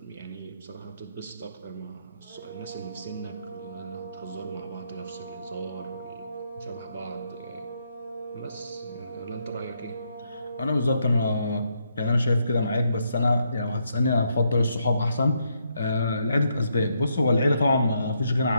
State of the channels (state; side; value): inverted; both; correlation -0.77